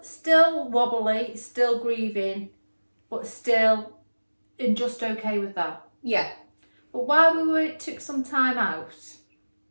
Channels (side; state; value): both; inverted; correlation -1.00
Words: still wobbly, still grieving, but still and just okay with that. Yeah. But while took some time out,